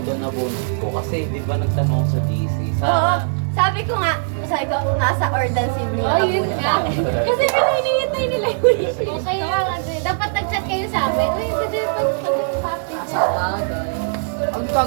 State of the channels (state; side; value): silent; left; digital silence